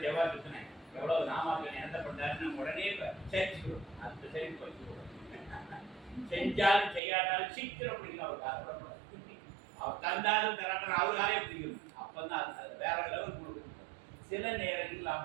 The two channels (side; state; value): left; drops out; at 7.0 s